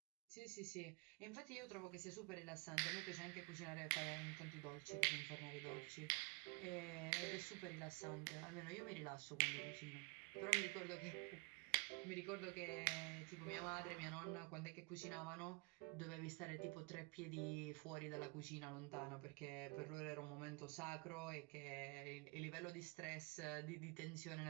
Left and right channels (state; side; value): quieter; left; 29.0 dB